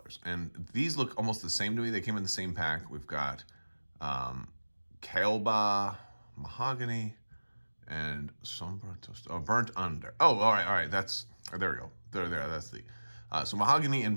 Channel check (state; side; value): inverted; both; correlation -1.00